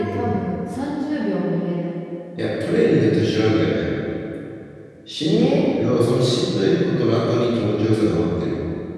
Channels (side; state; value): both; identical; correlation 1.00